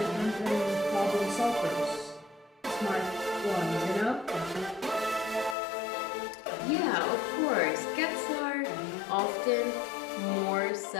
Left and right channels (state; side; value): drops out; right; at 5.6 s